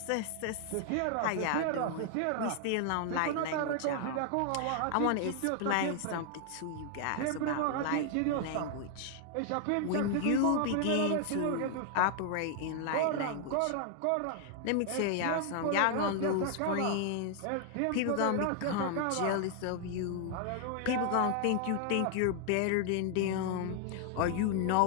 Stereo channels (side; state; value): both; different; correlation 0.00